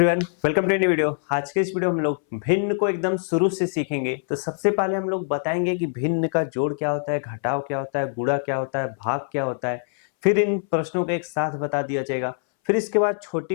welcome to new video. आज के इस वीडियो में हम लोग भिन्न को एकदम शुरू से सीखेंगे। तो सबसे पहले हम लोग बताएंगे कि भिन्न का जोड़ क्या होता है, घटाव क्या होता है, गुणा क्या होता है, भाग क्या होता है। फिर इन प्रश्नों को एक साथ बता दिया जाएगा। फिर इसके बाद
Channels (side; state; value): right; silent; 63 dB below the other